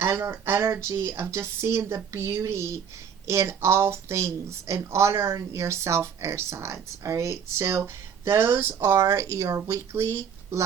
energy of just seeing the beauty in all things and honoring yourself, air signs. All right, so those are your weekly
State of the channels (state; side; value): quieter; left; 7.5 dB